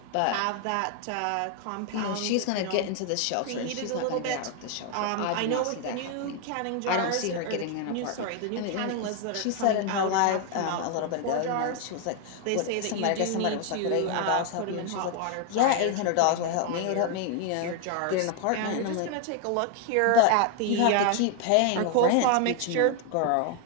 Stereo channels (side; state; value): both; different; correlation 0.00